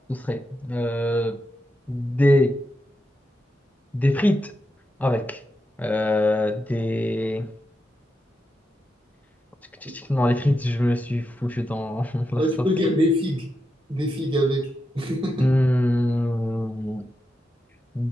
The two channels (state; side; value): normal; both; correlation 0.86